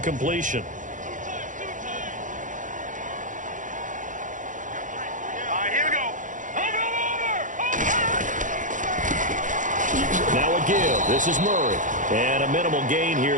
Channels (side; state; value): left; late; 0.37 ms